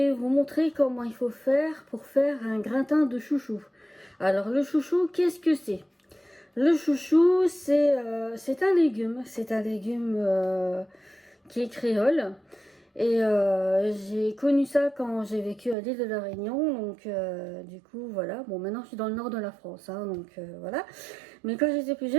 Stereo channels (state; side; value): drops out; left; at 15.8 s